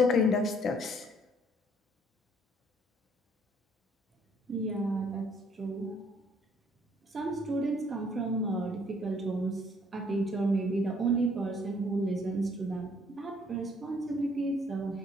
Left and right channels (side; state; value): both; normal; correlation 0.63